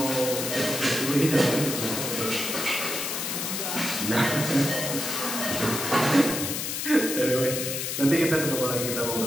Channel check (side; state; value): left; noise; hiss, 3 dB below the sound